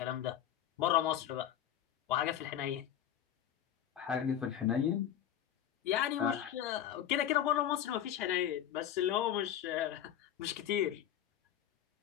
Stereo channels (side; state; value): right; quieter; 10.6 dB